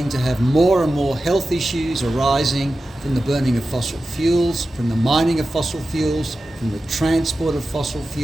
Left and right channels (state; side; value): normal; both; correlation 0.93